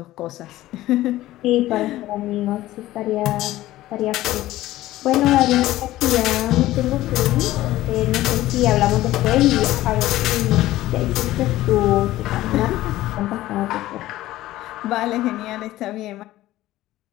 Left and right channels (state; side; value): quieter; right; 15.7 dB